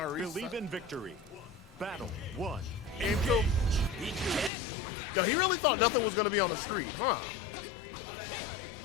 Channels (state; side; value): drops out; right; at 4.5 s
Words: Believe reset. in victory. Battle 1. Game 2. No, he really thought nothing was going to be on the street. Huh.